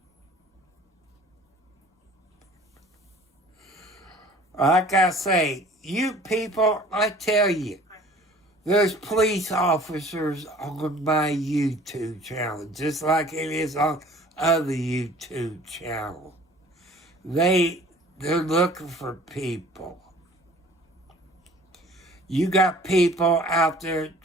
Like I say, you people, I tell you, there's police officers on my YouTube channel, just like it is on other YouTube channels. They're looking for people. You got people out there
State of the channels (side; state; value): both; normal; correlation 0.49